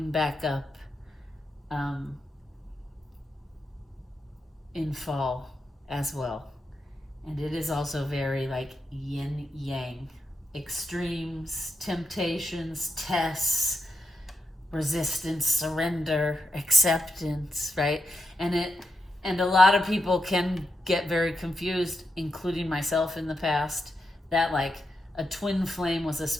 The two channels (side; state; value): both; normal; correlation 0.84